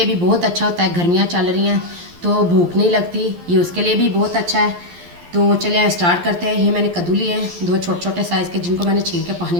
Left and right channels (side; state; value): left; late; 11 ms